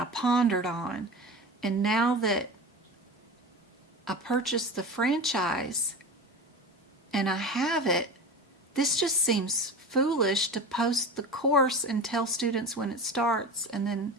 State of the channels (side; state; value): both; normal; correlation 0.30